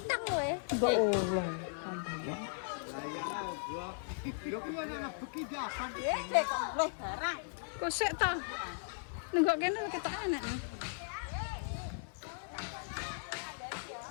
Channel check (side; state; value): right; silent; 53 dB below the other